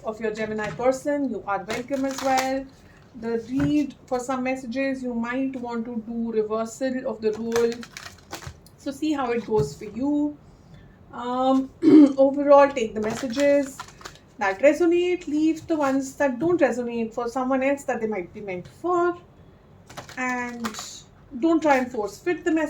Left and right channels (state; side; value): identical; both; correlation 1.00